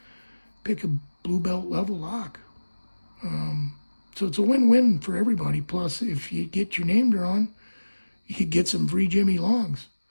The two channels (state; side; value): inverted; both; correlation -1.00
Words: blue belt level lock. So it's a win-win for everybody. Plus, if you get your name drawn, you could get some free Jimmy Longs.